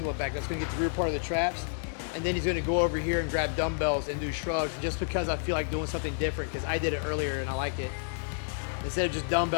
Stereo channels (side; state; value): right; silent; digital silence